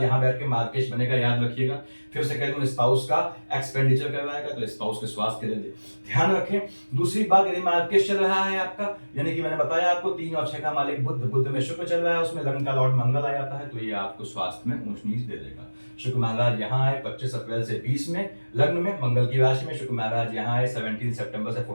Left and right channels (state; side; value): inverted; both; correlation -1.00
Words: यहाँ बैठ के मार्केश बनेगा, याद रखिएगा। फिर से कह दूं, स्पाउस का एक्सपेंडिचर करवाएगा, तो स्पाउस के स्वास्थ्य के लिए ध्यान रखें। दूसरी बात, यदि मार्केश चल रहा है आपका, यानी कि मैंने बताया आपको 3 और 6 का मालिक बुध, बुध में शुक्र चल रहा है, उसमें लग्न का लॉर्ड मंगल आ जाता है, तो ये आपको स्वास्थ्य में ऊंच नीच दे देगा। शुक्र महाराज यहाँ आए 25 अप्रैल से 20 में लग्न में मंगल की राशि में, शुक्र महाराज यहाँ आए 17 सितंबर से